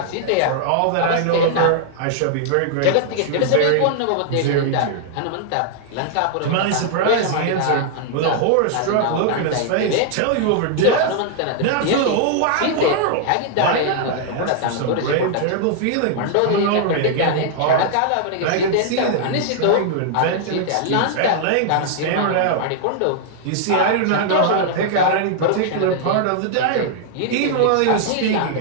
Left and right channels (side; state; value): both; different; correlation -0.01